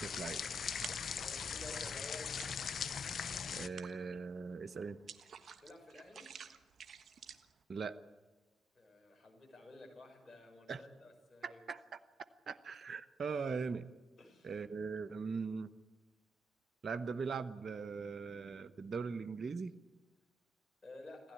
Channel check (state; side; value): normal; both; correlation 0.79